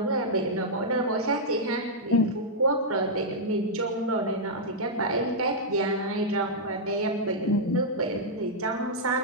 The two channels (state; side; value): normal; both; correlation -0.06